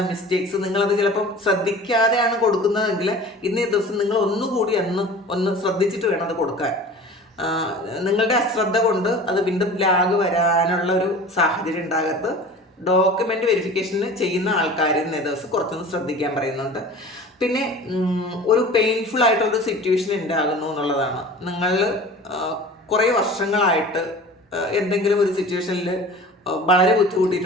മിസ്റ്റേക്സ് നിങ്ങളത് ചിലപ്പം ശ്രദ്ധിക്കാതെയാണ് കൊടുക്കുന്നതെങ്കിൽ ഇന്നേ ദിവസം നിങ്ങൾ ഒന്നുകൂടി ഒന്ന് ശ്രദ്ധിച്ചിട്ട് വേണം അത് കൊടുക്കാൻ. നിങ്ങളുടെ അശ്രദ്ധ കൊണ്ട് അത് വീണ്ടും ലാഗ് വരാനുള്ള ഒരു സാഹചര്യം ഉണ്ടാകരുത്. ഡോക്യുമെൻ്റ് വെരിഫിക്കേഷന് ചെയ്യുന്ന ആൾക്കാർ ഇന്നേ ദിവസം കുറച്ചൊന്ന് ശ്രദ്ധിക്കാൻ പറയുന്നുണ്ട്. പിന്നെ ഒരു പെയിൻഫുൾ ആയിട്ടുള്ളൊരു സിറ്റുവേഷൻ ഉണ്ടാകുന്നു എന്നുള്ളതാണ്. നിങ്ങൾ കുറേ വർഷങ്ങളായിട്ട് എന്തെങ്കിലും ഒരു സിറ്റുവേഷനിൽ വളരെ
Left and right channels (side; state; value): both; normal; correlation 0.40